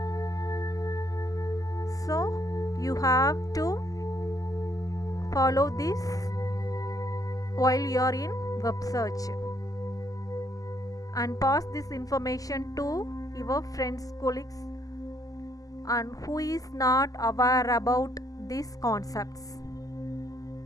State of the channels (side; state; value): right; late; 0.17 ms